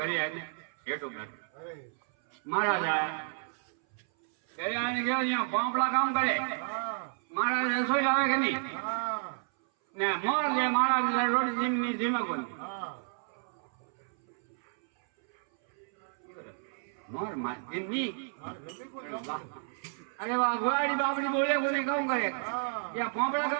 आने हेठो बैठ महाराज घरे आने गया यहाँ पापड़ा काम करे महाराज रसोई लावे के नहीं ने मोर ले महाराज रोटी जिमनी जिमा को मोर मार जिमनी अरे वाह गुआड़ी बाबड़ी बोले को नहीं कहूँ करे या पापड़ा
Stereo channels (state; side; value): silent; left; 57 dB below the other